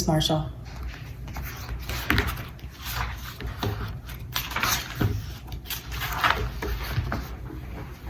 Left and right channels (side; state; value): both; identical; correlation 1.00